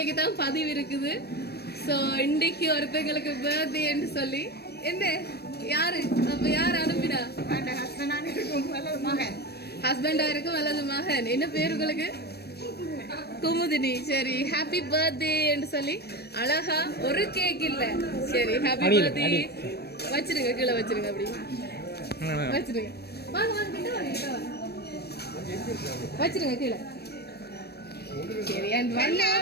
தான் பதிவு இருக்குது ஸோ இன்றைக்கு ஒருத்தங்களுக்கு பர்த்டேன்னு சொல்லி என்ன யாரு அப்ப யார் அனுப்பினா ஹஸ்பண்டா இருக்கும் அல்லது மகன் என்ன பேர் உங்களுக்கு குமுதினி சரி ஹாப்பி பர்த்டேன்னு சொல்லி அழகா ஒரு கேக் இல்ல சரி ஹாப்பி பர்த்டே வச்சிருங்க கீழே வச்சிருங்க அப்படி வச்சிருங்க வாங்க வாங்க கிட்ட வாங்க வச்சிருங்க கீழே சரி அண்ட் ஒன்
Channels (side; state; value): right; late; 0.47 ms